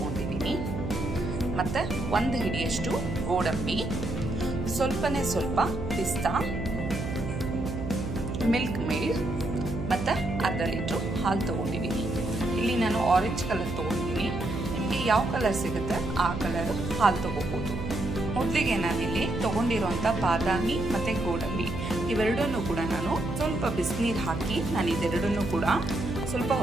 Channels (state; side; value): noise; right; hum, 6 dB below the sound